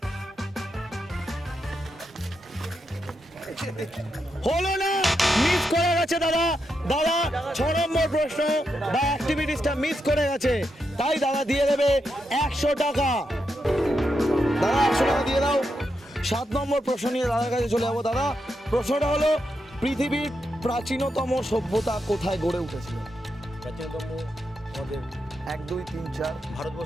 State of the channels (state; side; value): normal; both; correlation 0.84